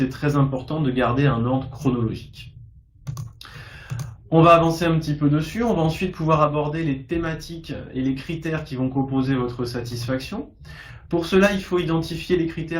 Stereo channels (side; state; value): both; identical; correlation 1.00